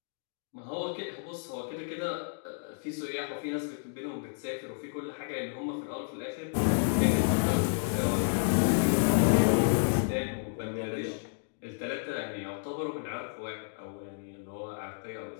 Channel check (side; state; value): right; silent; digital silence